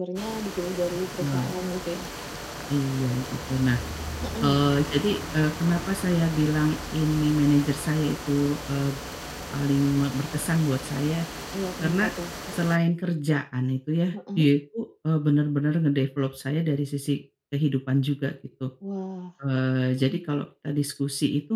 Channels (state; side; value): identical; both; correlation 1.00